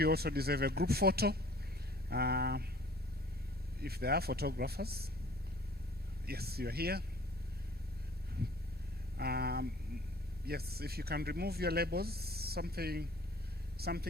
also deserve a group photo. If there are photographers. Yes, you're here. Yes, if you can remove your labels, something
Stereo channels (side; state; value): both; normal; correlation 0.51